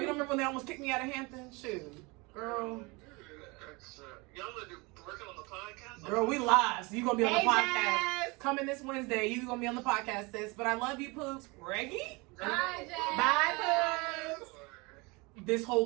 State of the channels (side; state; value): left; quieter; 26.4 dB